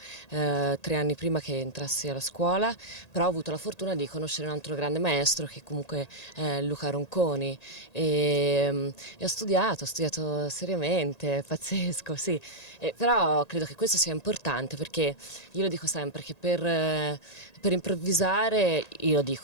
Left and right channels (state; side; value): late; right; 1.9 ms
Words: 3 anni prima che entrassi alla scuola, però ho avuto la fortuna di conoscere un altro grande maestro che comunque è Luca Ronconi e ho studiato seriamente, pazzesco, sì. Però credo che questo sia importante perché io lo dico sempre che per improvvisare, io lo